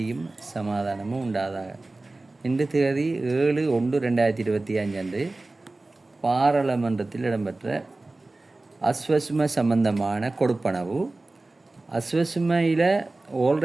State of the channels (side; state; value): left; quieter; 3.1 dB